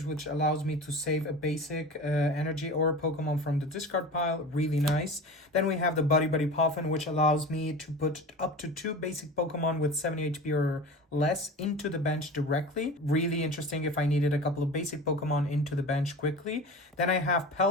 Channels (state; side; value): normal; both; correlation 0.34